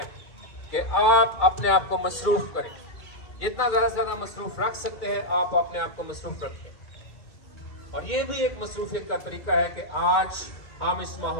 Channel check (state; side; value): late; right; 2.6 ms